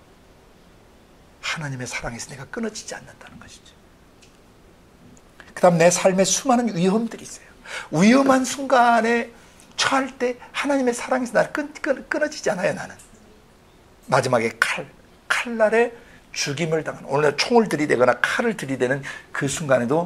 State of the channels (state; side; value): identical; both; correlation 1.00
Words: 하나님의 사랑에서 내가 끊어지지 않는다는 것이죠. 그 다음 내 삶에 수많은 위험들이 있어요. 위험한 순간에 처할 때 하나님의 사랑에서 나를 끊어지지 않아요. 나는 마지막에 칼날에 죽임을 당하는, 오늘 총을 들이대거나 칼을 들이대는 그